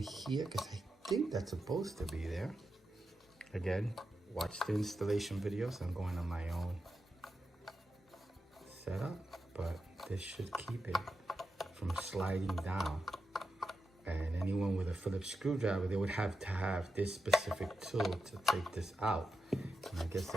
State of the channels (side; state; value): both; normal; correlation 0.88